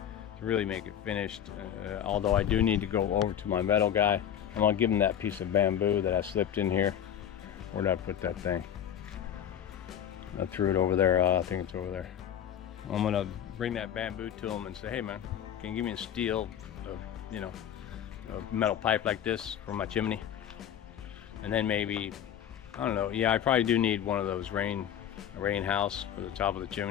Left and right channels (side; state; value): right; quieter; 9.7 dB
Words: to really make it finished. Although I do need to go over to my metal guy. I'm gonna give him that piece of bamboo that I slipped in here. Where did I put that thing? I threw it over there. I think it's over there. I'm gonna bring that bamboo to him and say, hey man, can you give me a steel, you know, a metal pipe like this for my chimney? And then maybe, I don't know, yeah, I probably do need one of those rain house for the top of the